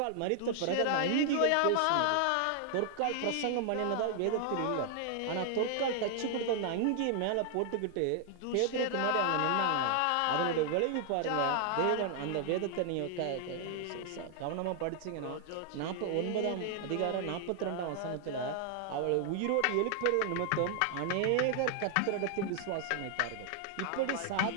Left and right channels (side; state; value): both; different; correlation 0.00